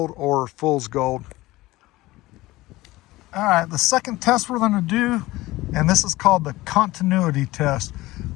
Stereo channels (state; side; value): quieter; right; 18.7 dB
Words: or fool's gold. All right, the second test we're going to do, and this is called the continuity test.